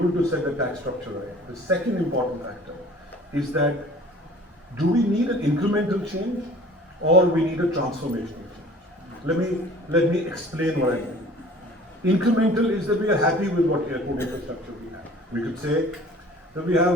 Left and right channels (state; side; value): normal; both; correlation 0.48